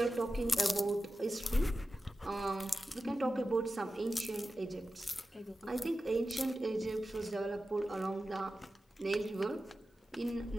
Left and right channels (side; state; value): both; normal; correlation 0.93